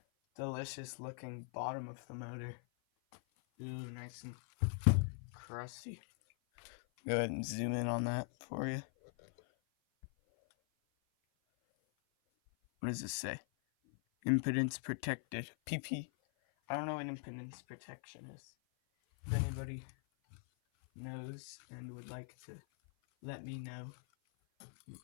delicious looking bottom of the motor. Ooh, nice and crusty. Go ahead and zoom in on that for you. What does this say? Impedance protected. PP. I don't know what impedance protection is. If anybody knows and would like to let me know, you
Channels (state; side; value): silent; right; 50 dB below the other